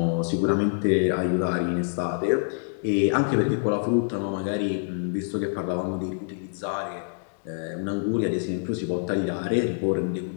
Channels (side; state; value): right; silent; digital silence